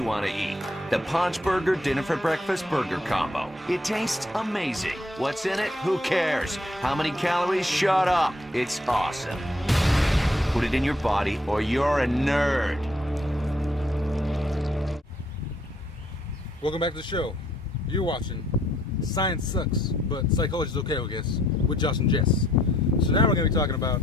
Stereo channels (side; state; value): both; normal; correlation 0.68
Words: want to eat. The Paunch Burger Dinner for Breakfast Burger Combo. It tastes amazing. What's in it? Who cares? How many calories? Shut up. It's awesome. Put it in your body or you're a nerd. Welcome back to the show. You're watching Science Sucks, but Psychology's okay, I guess, with Josh and Jess. So now we're going to be talking about